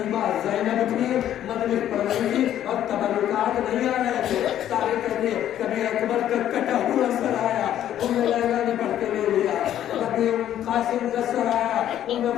زینب تھی، مجلس پڑھ رہی تھی اور تبرکات نہیں آ رہے تھے. تاریخ کہتے ہیں کبھی اکبر کا کٹا ہوا سر آیا، انہیں لیلا نے پڑھ کے لے لیا. کبھی قاسم کا سر آیا، انہیں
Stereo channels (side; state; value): right; quieter; 11.3 dB